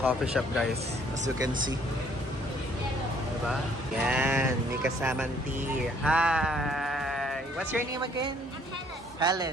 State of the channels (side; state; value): both; normal; correlation 0.62